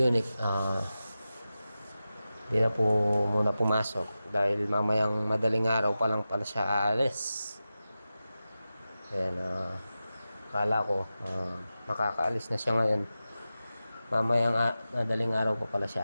hindi na po muna pumasok dahil mamayang madaling araw pa lang pala siya aalis. Ayan, akala ko makakaalis na siya ngayon. Mamayang madaling araw pa pala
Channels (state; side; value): inverted; both; correlation -0.93